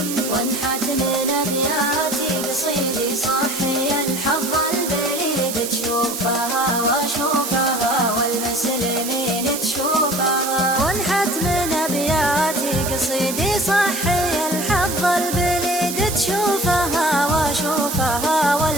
وانحت من ابياتي قصيدي صحي الحظ البليد تشوفها واشوفها والمسلمين تشوفها وانحت من ابياتي قصيدي صحي الحظ البليد تشوفها واشوفها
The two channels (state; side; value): noise; right; hiss, 6 dB below the sound